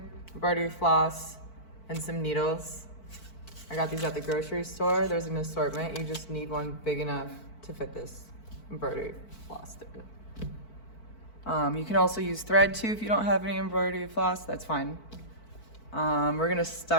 Embroidery floss, and some needles. I got these at the grocery store. There's an assortment. You just need one big enough to fit this embroidery floss through. You can also use thread too if you don't have any embroidery floss, that's fine. We're gonna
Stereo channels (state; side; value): late; right; 4.5 ms